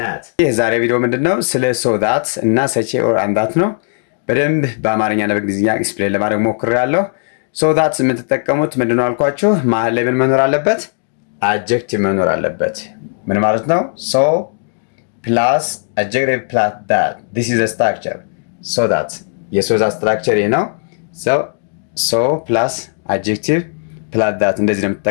የዛሬ ቪዲዮ ምንድነው? ስለ ሶ ዳት እና ሰቼ ኦር አን ዳት ነው። በደንብ በአማርኛና በእንግሊዝኛ ኤክስፕሌን ለማድረግ ሞክሬያለሁ። ሶ ዳት የምትጠቀሙት ምንድነው አልኳችሁ? መሀል ላይ ምን መኖር አለበት? አጀክቲቭ መኖር አለበት። ምን ማለት ነው? ሶ ፕላስ አጀክቲቭ ፕላስ ዳት this is a structure። ሶ ዳት የሶ ዳት ስትራክቸር ይሄ ነው። ሶ ፕላስ አጀክቲቭ ፕላስ ዳት እንደዚህ ነው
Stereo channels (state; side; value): silent; right; digital silence